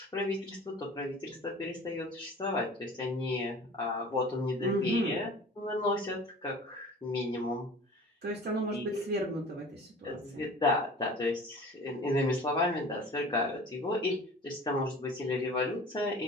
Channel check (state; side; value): normal; both; correlation 0.42